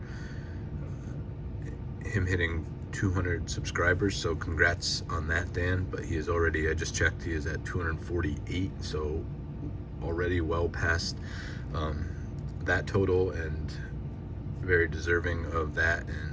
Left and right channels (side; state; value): both; identical; correlation 1.00